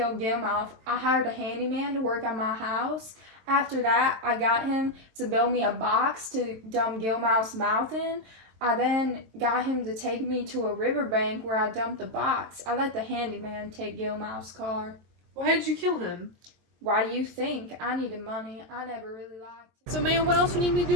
Gilmouth, I hired a handyman to work on my house. After that, I got him to build me a box to dump Gilmouth's mouth in. I then got him to take me to a riverbank where I dumped the box. I let the handyman take Gilmouth's car. Why did you kill him? Why do you think? I needed money. I never really liked it. So, man, what else you need me to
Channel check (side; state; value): left; late; 23 ms